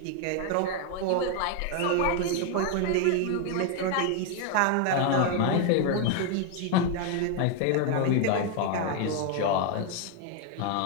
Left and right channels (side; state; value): both; different; correlation 0.01